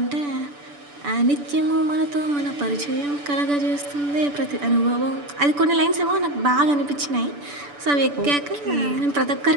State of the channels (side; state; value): left; late; 6.9 ms